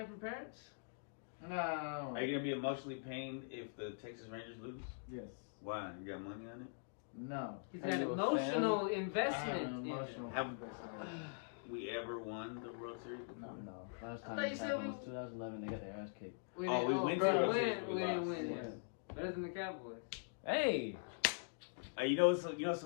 from parents? No. Are you gonna be emotionally pained if the Texas Rangers lose? Yes. Why? You got money on it? No. He's Are got you a emotional fan? I have investment. an in it. emotional Have- investment. We ever won the World Series? No. No, last I time thought you this said happened we- was 2011. They got their ass kicked. We Oh, didn't, we went to the we World didn't Series, we win. lost. Yeah. Better than the Cowboys. Hey, You know it's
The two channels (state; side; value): silent; right; digital silence